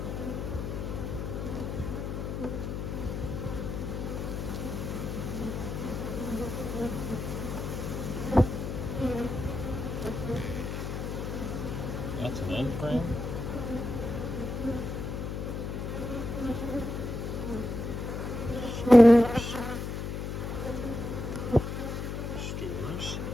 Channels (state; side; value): noise; left; hum, 4 dB below the sound